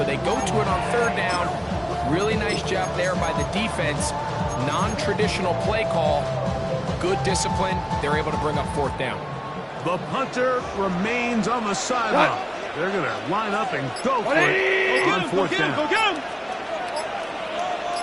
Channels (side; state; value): both; identical; correlation 1.00